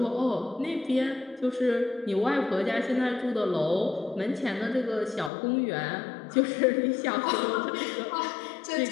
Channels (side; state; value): right; drops out; at 5.3 s